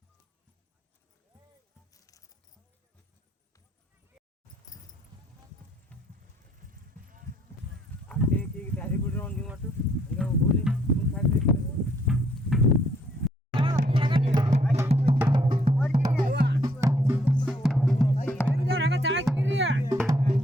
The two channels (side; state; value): both; normal; correlation 0.67